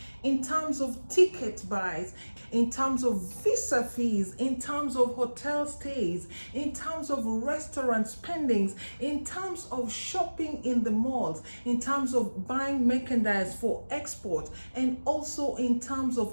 in terms of ticket buys, in terms of visa fees, in terms of hotel stays, in terms of restaurant spendings, in terms of shopping in the malls, in terms of buying merchandise for export, and also in terms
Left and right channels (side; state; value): both; inverted; correlation -1.00